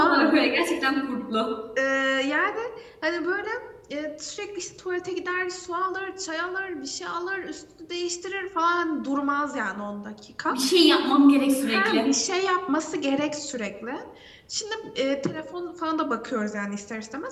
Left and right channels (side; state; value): both; identical; correlation 1.00